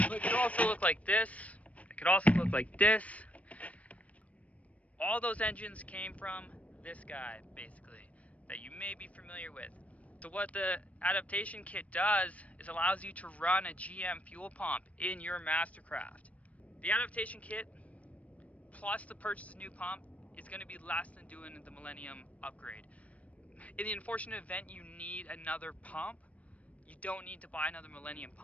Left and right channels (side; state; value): right; late; 0.066 ms